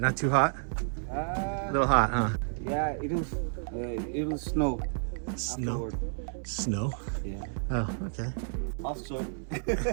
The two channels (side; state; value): left; silent; 57 dB below the other